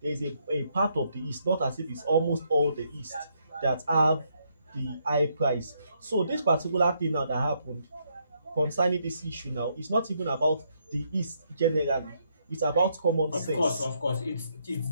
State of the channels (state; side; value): inverted; both; correlation -0.75